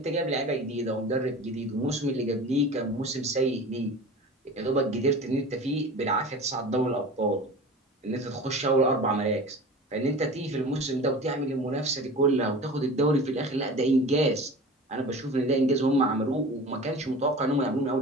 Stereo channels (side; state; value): both; normal; correlation 0.37